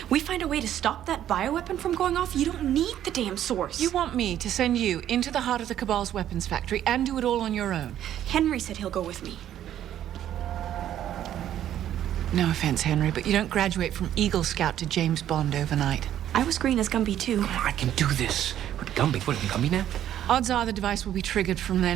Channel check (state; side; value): quieter; left; 11.3 dB